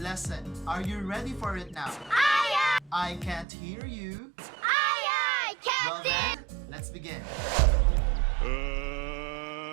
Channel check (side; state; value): left; drops out; at 3.5 s